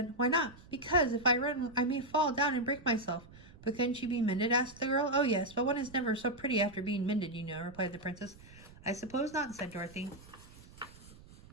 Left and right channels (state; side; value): noise; right; rumble, 21 dB below the sound